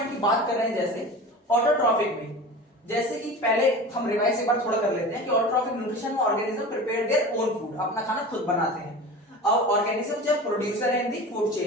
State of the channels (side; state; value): both; normal; correlation 0.34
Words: की बात कर रहे हैं, जैसे ऑटोट्रॉफिक में, जैसे कि पहले हम रिवाइज एक बार थोड़ा कर लेते हैं कि ऑटोट्रॉफिक न्यूट्रिशन में organism prepare their own food, अपना खाना खुद बनाते हैं। अब ऑर्गेनिज्म जब प्रोड्यूसर है इन दी फूड